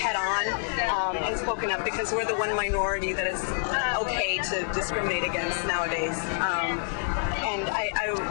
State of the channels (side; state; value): right; silent; digital silence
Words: and spoken up, because we're the one minority that is okay to discriminate against nowadays. And I